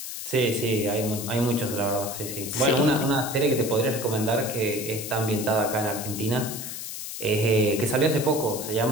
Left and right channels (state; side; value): noise; left; hiss, 8 dB below the sound